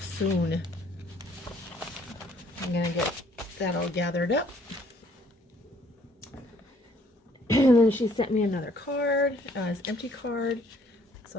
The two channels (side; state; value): both; normal; correlation 0.62